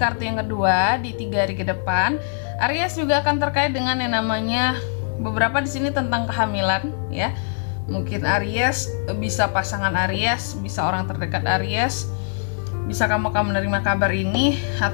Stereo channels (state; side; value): silent; right; digital silence